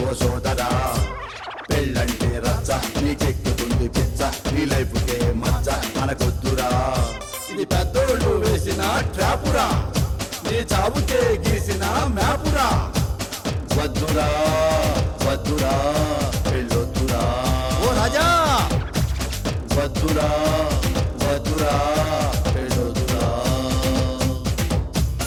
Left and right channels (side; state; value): both; identical; correlation 1.00